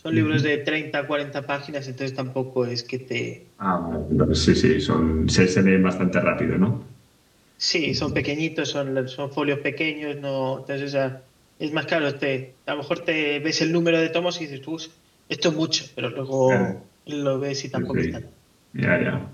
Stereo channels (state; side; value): identical; both; correlation 1.00